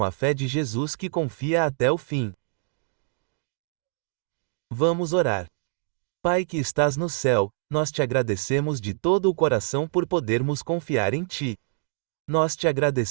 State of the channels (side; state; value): left; silent; digital silence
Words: a fé de Jesus que confia até o fim. Vamos orar. Pai que estás no céu, nós te agradecemos de todo o coração por podermos confiar em Ti. Nós te